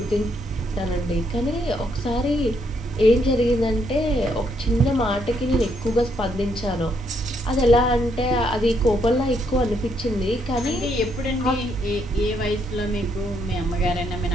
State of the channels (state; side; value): normal; both; correlation 0.74